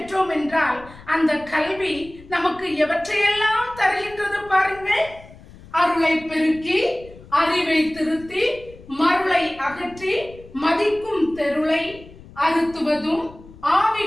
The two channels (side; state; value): left; noise; rumble, 20 dB below the sound